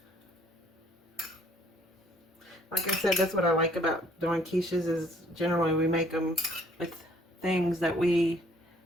Like I said, that's what I like about doing quiches, is generally we make them with things that we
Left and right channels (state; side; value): normal; both; correlation 0.60